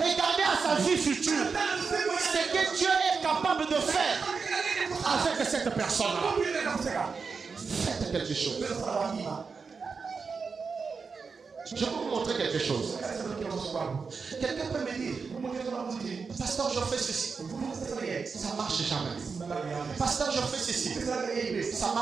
à sa vie future. Ce que Dieu est capable de faire avec cette personne-là. Faites quelque chose. Je vais vous montrer quelque chose. Quelqu'un peut me dire, pasteur, je fais ceci. Ça marche jamais. Pasteur, je fais ceci. Ça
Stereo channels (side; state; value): left; quieter; 5.1 dB